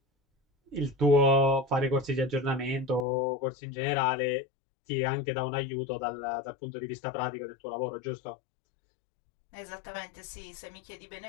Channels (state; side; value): drops out; right; at 3.1 s